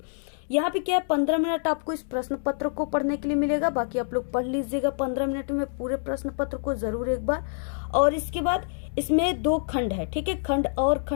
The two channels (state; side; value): silent; right; 61 dB below the other